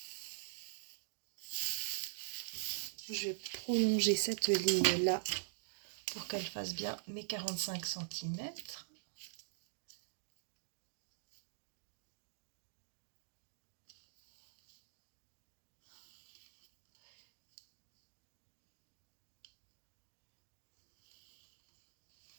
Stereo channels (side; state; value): left; silent; digital silence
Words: Je vais prolonger cette ligne-là pour qu'elle fasse bien mes 45 cm.